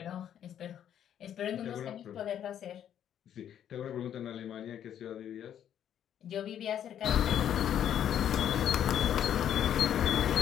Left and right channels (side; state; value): right; quieter; 10.0 dB